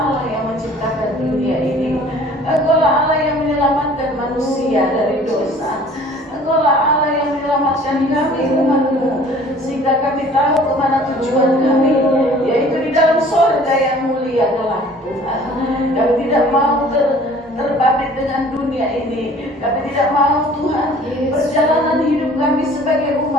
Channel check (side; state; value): both; normal; correlation 0.51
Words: yang menciptakan dunia ini. Engkau lah Allah yang menyelamatkan manusia dari dosa. Engkau lah Allah yang menyelamatkan kami umat-Mu, sehingga kami tahu kemana tujuan kami, yaitu di dalam surga yang mulia kelak Tuhan. Kami tidak mau terbabit dengan dunia ini. Kami tidak mau Tuhan perjalanan hidup kami sebagai